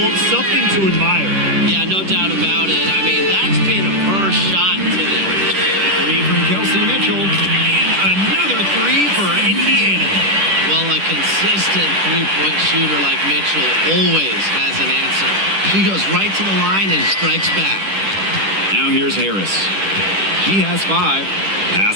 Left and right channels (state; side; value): late; left; 10 ms